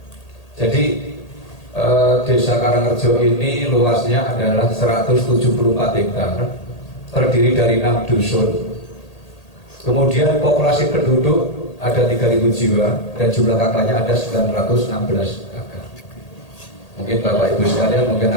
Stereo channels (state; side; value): late; right; 1.8 ms